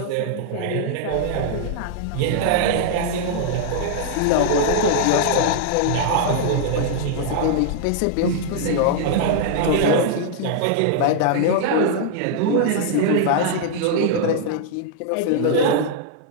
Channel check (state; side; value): different; both; correlation -0.01